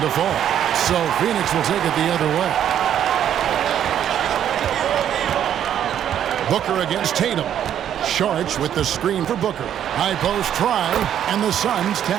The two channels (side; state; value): left; quieter; 10.0 dB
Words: fall. So Phoenix will take it the other way. Booker against Tatum. Saric with the screen for Booker. High post try, and the Suns